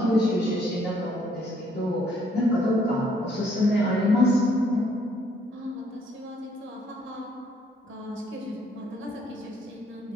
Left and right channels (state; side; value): normal; both; correlation 0.66